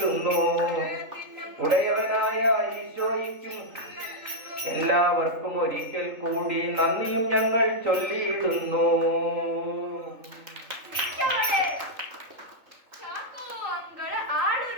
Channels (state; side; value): late; left; 3.6 ms